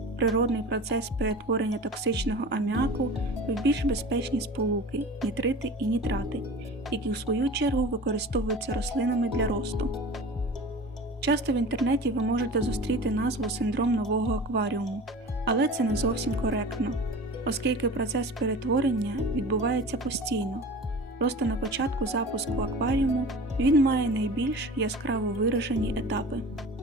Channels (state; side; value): normal; both; correlation 0.37